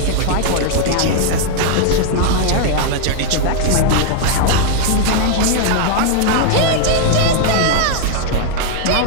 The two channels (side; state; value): both; different; correlation 0.00